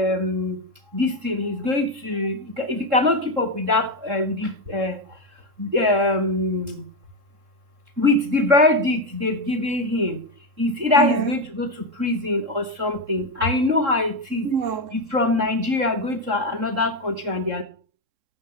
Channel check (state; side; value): late; left; 3.7 ms